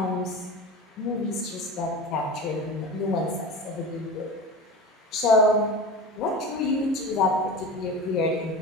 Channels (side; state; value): both; normal; correlation 0.30